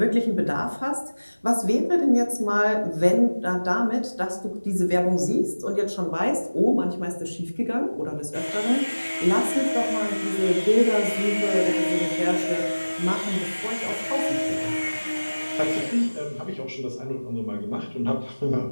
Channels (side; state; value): both; inverted; correlation -1.00